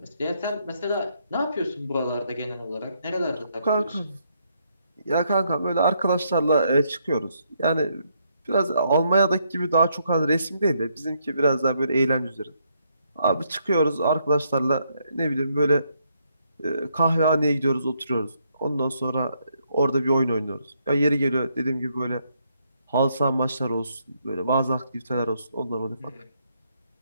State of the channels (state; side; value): inverted; both; correlation -0.75